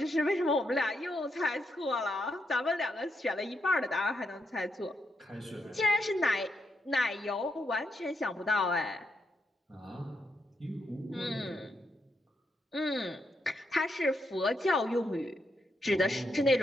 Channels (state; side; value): normal; both; correlation 0.81